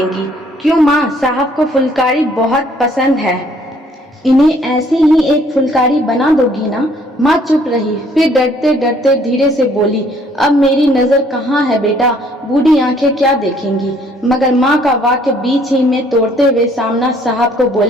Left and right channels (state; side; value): normal; both; correlation 0.62